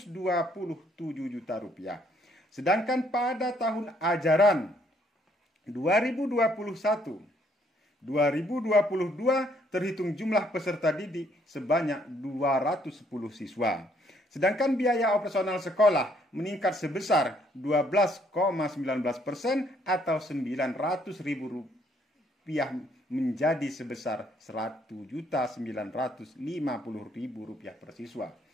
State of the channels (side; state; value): both; normal; correlation 0.67